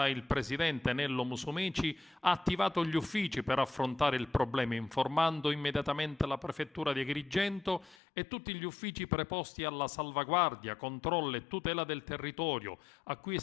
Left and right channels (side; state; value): right; drops out; at 8.0 s